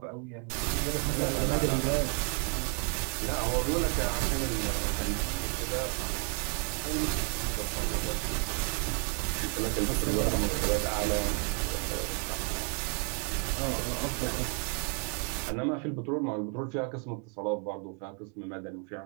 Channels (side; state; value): left; quieter; 39.5 dB